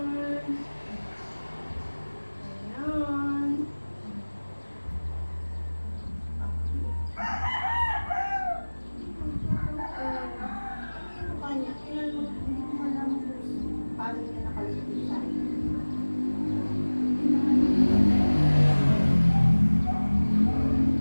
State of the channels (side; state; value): both; inverted; correlation -1.00